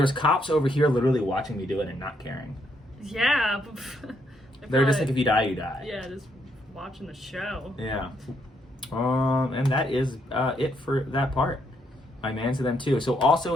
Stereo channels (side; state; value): both; normal; correlation 0.74